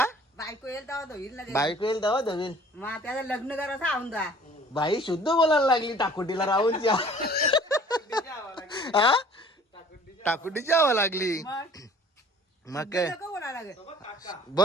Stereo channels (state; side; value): normal; both; correlation 0.51